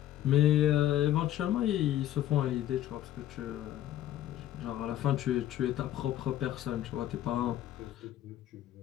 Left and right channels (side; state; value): right; quieter; 12.5 dB